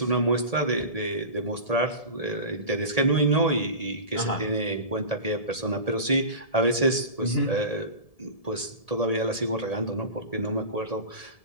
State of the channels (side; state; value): right; late; 1.7 ms